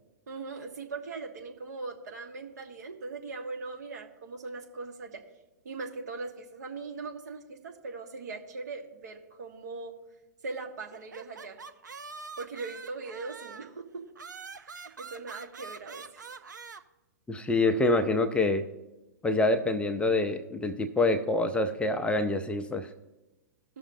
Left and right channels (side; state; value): both; normal; correlation 0.23